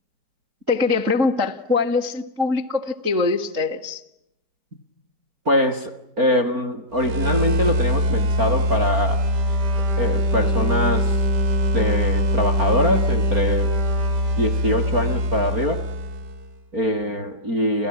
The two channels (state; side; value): late; left; 4.4 ms